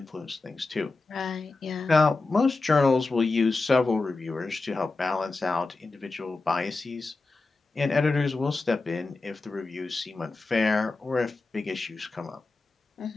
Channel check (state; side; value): quieter; right; 3.6 dB